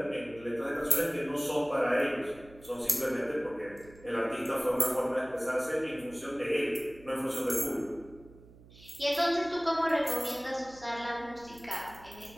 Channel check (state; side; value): noise; right; hum, 22 dB below the sound